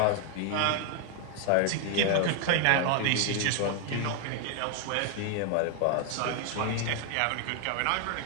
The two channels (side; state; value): both; different; correlation 0.00